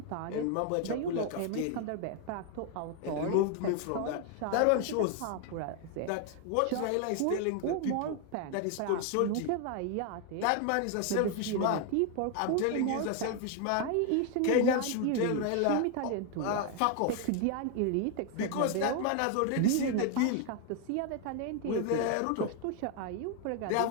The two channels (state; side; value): different; both; correlation 0.01